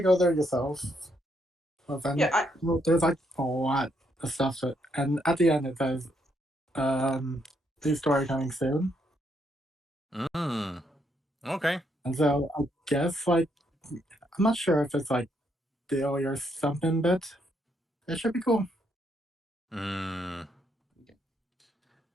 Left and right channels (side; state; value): both; normal; correlation 0.75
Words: go there yourself. Well, then, there's like a lot of stuff, and at the end it says, "New story coming soon." Okay. And so I guess like I'm not sure if it's like daily or something, but it should be cool.